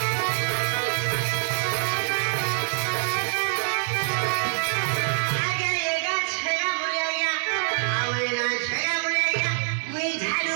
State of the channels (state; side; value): silent; left; digital silence